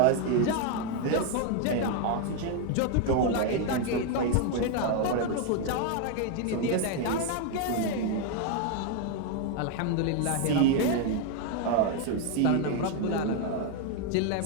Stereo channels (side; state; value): both; different; correlation 0.01